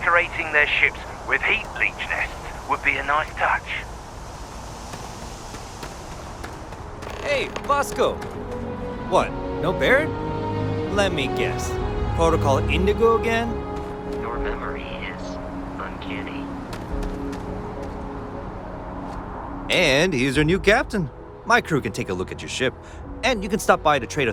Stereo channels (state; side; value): identical; both; correlation 1.00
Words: their ships with heat leech nests would be a nice touch. Hey, Bosco! What, no Barrett? Let me guess. Protocol Indigo again? Your memory is uncanny. And he's your new captain. My crew can take a look at your ship, and you can stop by the Trade